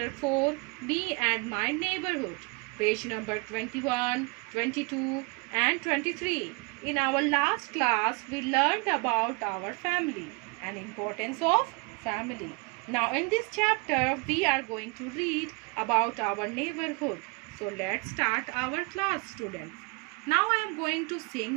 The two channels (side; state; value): left; quieter; 30.3 dB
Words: 4, Me and My Neighborhood, page number 21, 22 and 23. In our last class, we learned about our family and importance of family. Now in this chapter, we are going to read about our neighborhood. So let's start our class, students. Now I am going to